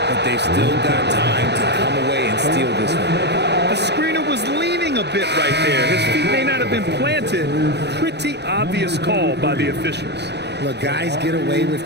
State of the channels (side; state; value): left; late; 0.49 ms